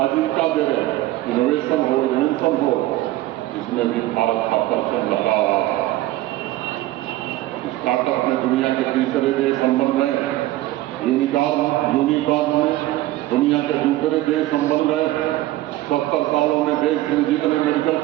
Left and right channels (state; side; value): quieter; left; 16.3 dB